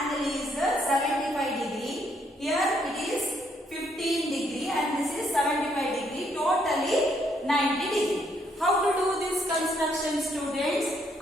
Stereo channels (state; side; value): normal; both; correlation 0.72